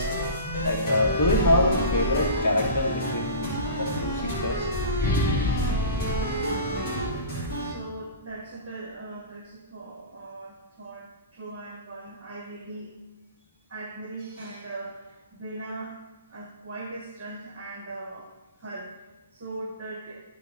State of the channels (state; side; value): inverted; both; correlation -0.36